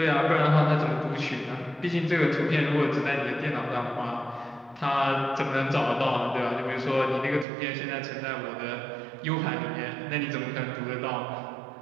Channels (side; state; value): left; drops out; at 7.5 s